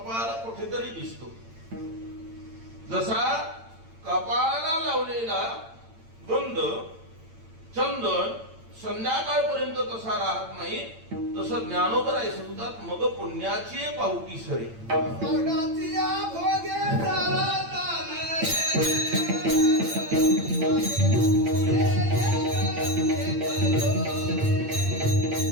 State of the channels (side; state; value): left; late; 8.9 ms